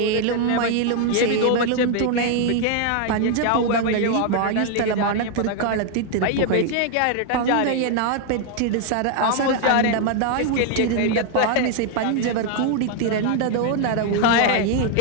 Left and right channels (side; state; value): both; different; correlation 0.00